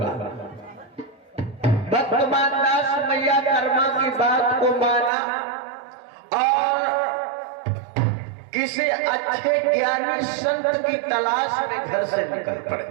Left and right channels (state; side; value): drops out; left; at 5.1 s